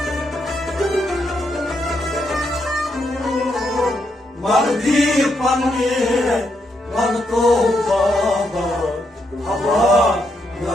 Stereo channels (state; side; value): normal; both; correlation 0.79